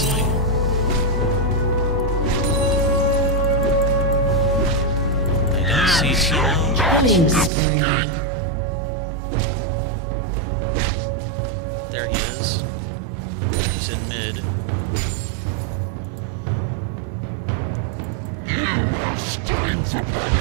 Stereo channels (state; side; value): drops out; left; at 7.5 s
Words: I don't see Teemo. There he is.